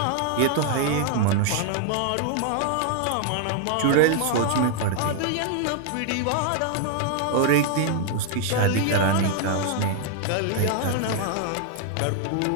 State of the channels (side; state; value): both; different; correlation 0.00